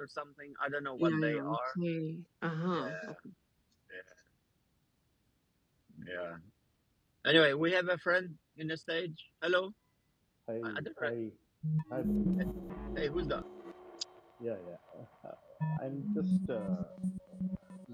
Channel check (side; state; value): both; identical; correlation 1.00